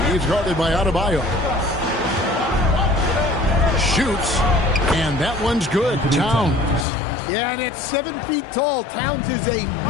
He's guarded by Adebayo. Shoots, and that one's good. Towns. Yeah, and at 7 feet tall, Towns is a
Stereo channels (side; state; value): right; drops out; at 6.9 s